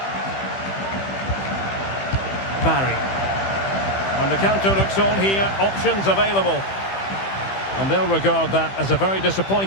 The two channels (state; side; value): late; right; 15 ms